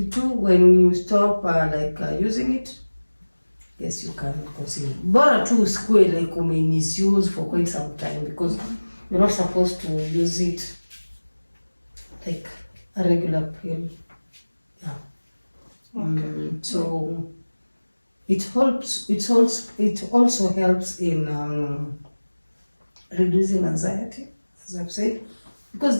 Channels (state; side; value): inverted; both; correlation -1.00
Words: when you stop using it, yes, you can conceive. Bora tu usikue like misuse for quite some time, because you're not supposed to use it like a regular pill. Yeah. Okay. So it helps. It also helps in reducing anxiety, as I've said, because